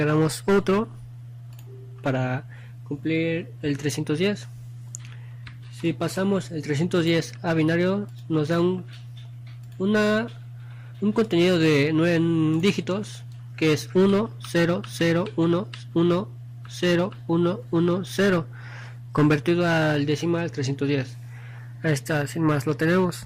otro para cumplir el 310. Si pasamos el 310 a binario, nos da un contenido de 9 dígitos, que es 1 0 0 1 1 0 1 1 0, convertido al decimal 310. Ahí está, sin más lo tenemos.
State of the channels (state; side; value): identical; both; correlation 1.00